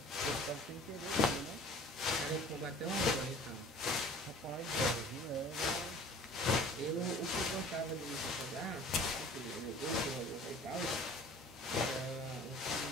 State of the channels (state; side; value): normal; both; correlation 0.47